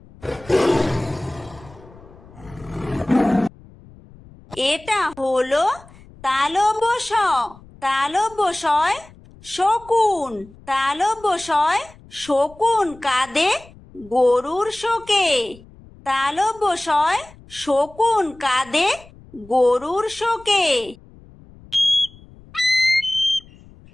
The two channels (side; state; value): left; noise; rumble, 23 dB below the sound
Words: এটা হলো তালব্য শ, তালব্য শয় শকুন, তালব্য শয় শকুন কাঁদে গরুর শোকে, তালব্য শয় শকুন কাঁদে গরুর শোকে।